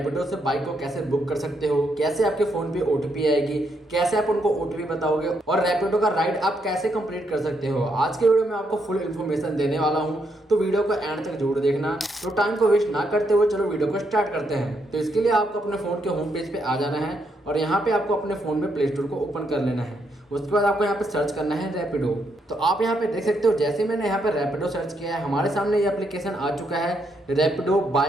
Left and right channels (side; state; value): both; normal; correlation 0.77